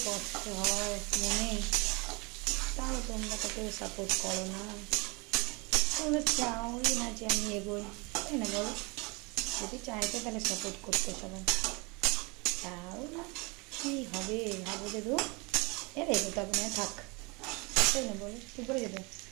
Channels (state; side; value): quieter; left; 28.3 dB